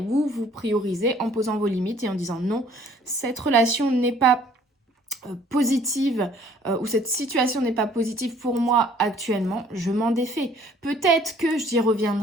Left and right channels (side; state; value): both; normal; correlation 0.57